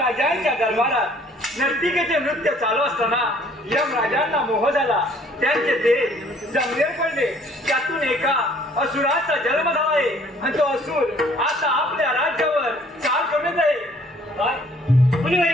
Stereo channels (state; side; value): normal; both; correlation 0.58